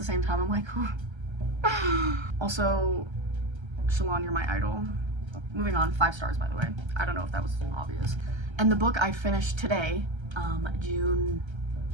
same time, I'm like, also, Shalon, you're my idol. Moving on, 5 stars, by the way. I don't know if that was obvious. And the book I finished today, June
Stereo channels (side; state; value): left; late; 1.3 ms